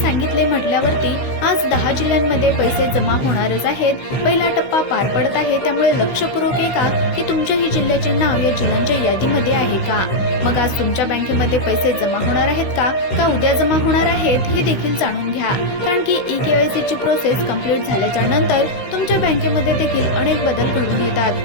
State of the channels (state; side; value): late; right; 16 ms